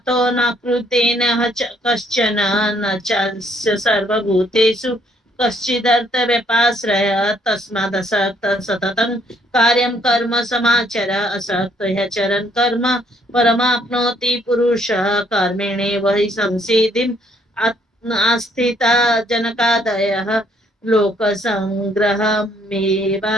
न कृतेन कश्चन न चास्य सर्वभूतेषु कश्चिदर्थव्यपाश्रय तस्मादसक्त सततं कार्यं कर्म समाचर असक्त ह्यचरन् कर्म परमाप्नोति पुरुषः कर्मेणैव हि संसिद्धिम् आस्थिता जनकादयः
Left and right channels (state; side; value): normal; both; correlation 0.67